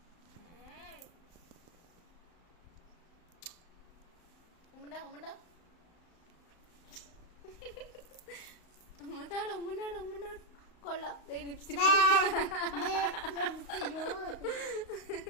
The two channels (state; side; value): late; right; 35 ms